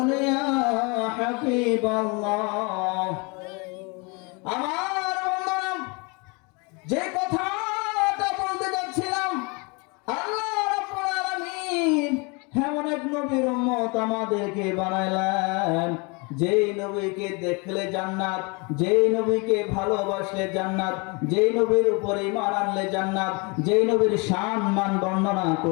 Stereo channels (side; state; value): right; quieter; 30.3 dB